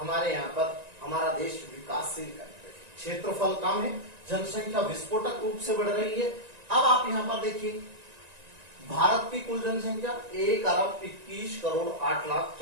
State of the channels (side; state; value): left; late; 1.9 ms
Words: यहाँ पर हमारा देश विकासशील कंट्री है, क्षेत्रफल कम है, जनसंख्या विस्फोटक रूप से बढ़ रही है। अब आप यहाँ पर देखिए, भारत की कुल जनसंख्या